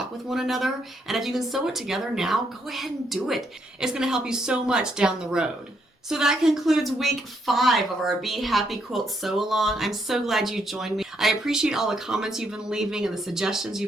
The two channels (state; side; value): normal; both; correlation 0.75